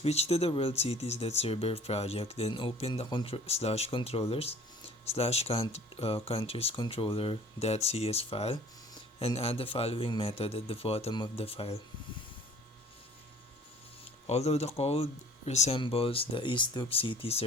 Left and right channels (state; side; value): normal; both; correlation 0.50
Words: to the world cities.server project, then open the /controllers/countries controller.cs file and add the following method at the bottom of the file. Although the code resembles the ISDUP-CT